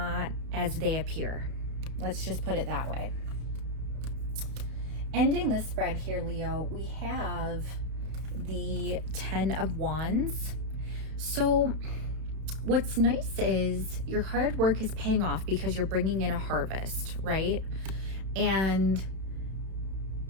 as they appear. Let's just put it that way. Ending the spread here, Leo, we have the 10 of Wands. So what's nice is your hard work is paying off because you're bringing in a harvest, right? And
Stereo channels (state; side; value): late; left; 32 ms